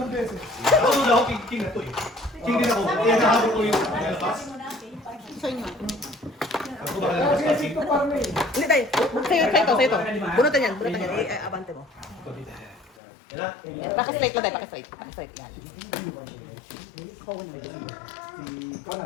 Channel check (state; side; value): drops out; right; at 13.0 s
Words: beses. Ako na ako, king na to eh. King din ako. Kaya nahabol ko yung lapas. Sa inyo. Ako ba kaya lapas king? Hindi tayo. Sa'yo to. Bunutan yan. Abante mo. Paki-straight lang tayo, paki-straight. Yan.